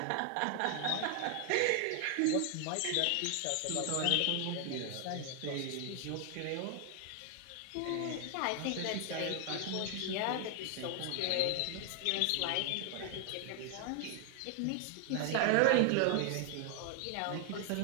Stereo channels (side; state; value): both; different; correlation 0.00